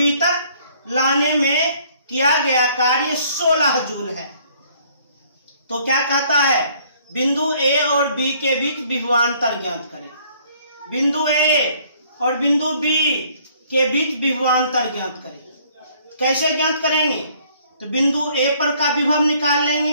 तक लाने में किया गया कार्य 16 जूल है। तो क्या कहता है? बिंदु ए और बी के बीच विभवांतर ज्ञात करें। बिंदु ए और बिंदु बी के बीच विभवांतर ज्ञात करें। कैसे ज्ञात करेंगे? तो बिंदु ए पर का विभव निकाल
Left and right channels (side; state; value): both; inverted; correlation -0.61